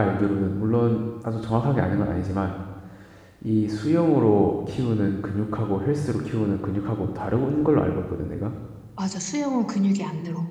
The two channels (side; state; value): both; identical; correlation 1.00